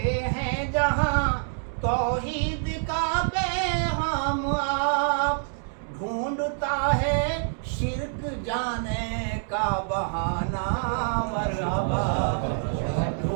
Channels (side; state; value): left; silent; digital silence